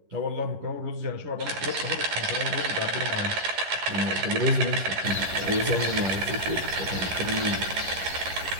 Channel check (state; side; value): late; left; 11 ms